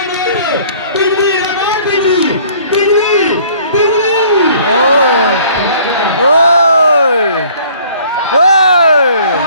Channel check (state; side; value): inverted; both; correlation -0.55